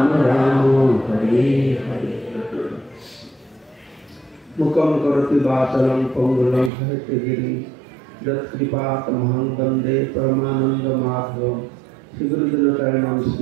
राम हरे हरे मुखम करोति वाचालं पंगुलं हरितगिरि यत्कृपातमहं वन्दे परमानन्दमाधवं श्रीगुरुजनचरणं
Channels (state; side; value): drops out; left; at 6.7 s